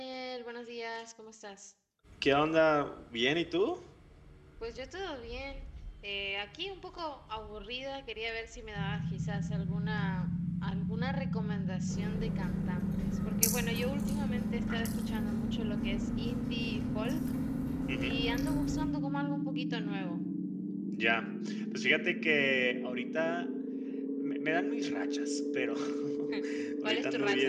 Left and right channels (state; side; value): identical; both; correlation 1.00